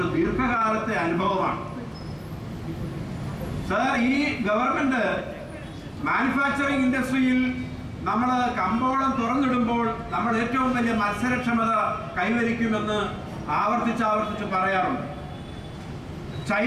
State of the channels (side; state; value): both; identical; correlation 1.00